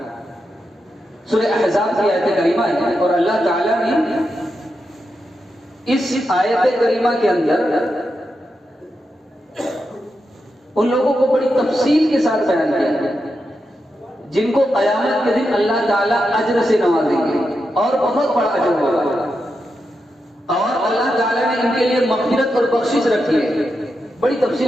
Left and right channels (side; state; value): both; normal; correlation 0.87